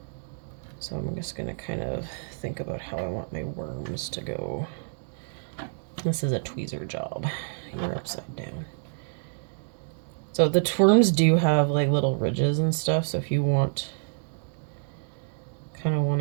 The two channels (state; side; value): silent; left; digital silence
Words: So I'm just gonna kind of think about how I want my worms to go. This is a tweezer job. You're upside down. So the worms do have like little ridges and stuff, so if you kind of want